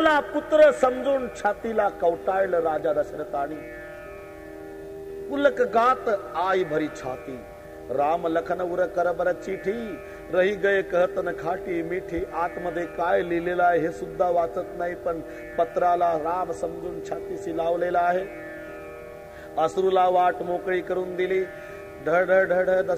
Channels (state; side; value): identical; both; correlation 1.00